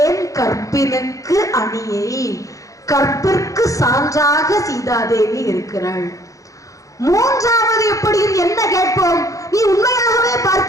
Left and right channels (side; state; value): right; late; 0.16 ms